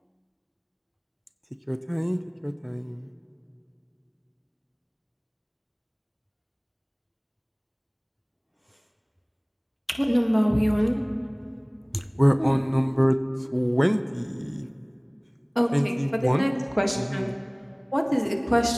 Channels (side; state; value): both; identical; correlation 1.00